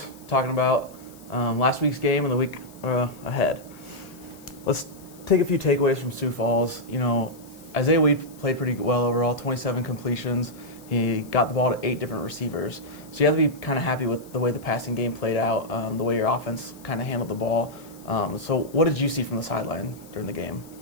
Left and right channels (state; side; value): noise; left; hiss, 23 dB below the sound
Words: talking about last week's game and the week ahead. Let's take a few takeaways from Sioux Falls. Isaiah Wade played pretty well overall, 27 completions. He got the ball to 8 different receivers. So you have to be kind of happy with the way the passing game played out, the way your offense kind of handled the ball. So what did you see from the sideline during the game?